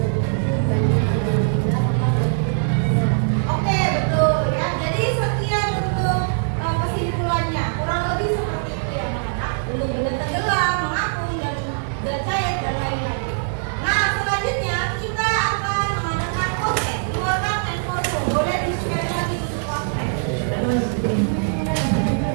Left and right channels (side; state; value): left; silent; 62 dB below the other